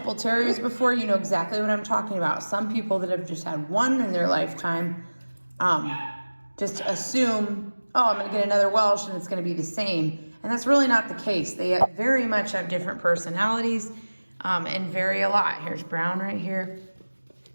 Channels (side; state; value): both; inverted; correlation -1.00